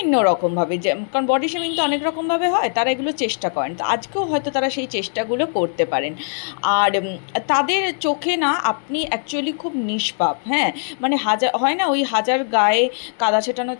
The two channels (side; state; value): right; silent; digital silence